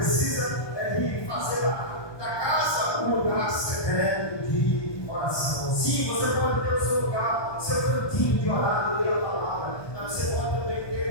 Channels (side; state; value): right; late; 1.2 ms